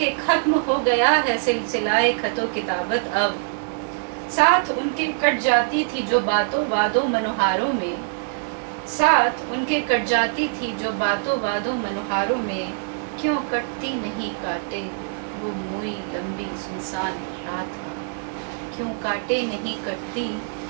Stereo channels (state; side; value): silent; left; 63 dB below the other